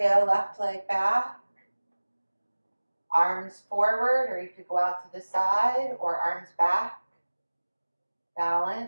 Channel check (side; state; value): both; inverted; correlation -1.00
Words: left leg back. Arms forward, or you could go out to the side, or arms back.